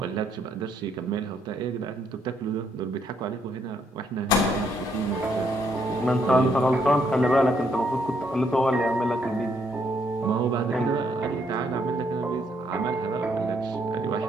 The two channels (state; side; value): normal; both; correlation 0.72